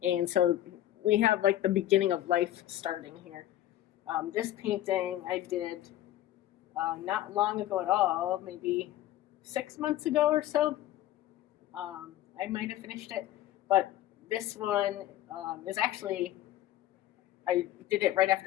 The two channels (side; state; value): right; quieter; 13.6 dB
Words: And so we have like the beginning of life starting here. This painting I did not long ago at all, maybe 6 months ago or so. I might have finished it, but this one is actually, I did it right